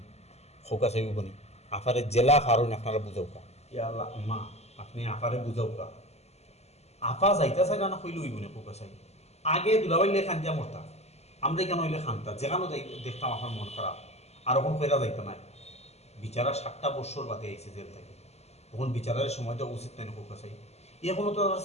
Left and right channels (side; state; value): right; late; 0.31 ms